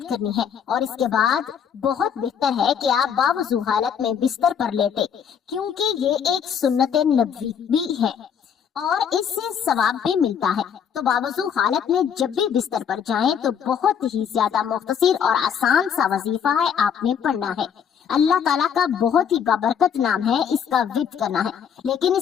करनी है। और इसके बाद बहुत बेहतर है कि आप बावजू हालत में बिस्तर पर लेटे, क्योंकि ये एक सुन्नत नबवी भी है और इससे सवाब भी मिलता है। तो बावजू हालत में जब भी बिस्तर पर जाएं तो बहुत ही ज्यादा मुख्तसर और आसान सा वजीफा है, आपने पढ़ना है। अल्लाह ताला का बहुत ही बाबरकत नाम है, इसका विर्द करना है। लेकिन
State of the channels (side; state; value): right; quieter; 7.8 dB